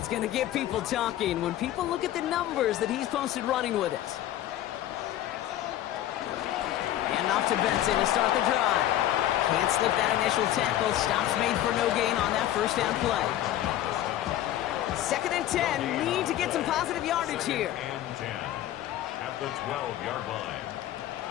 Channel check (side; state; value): right; quieter; 13.0 dB